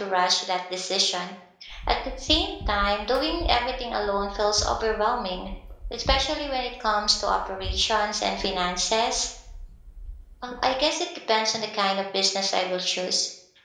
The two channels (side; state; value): both; identical; correlation 1.00